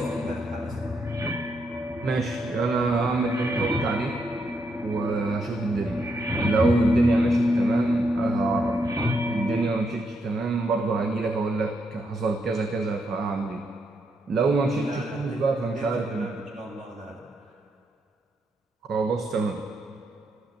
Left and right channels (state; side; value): normal; both; correlation 0.79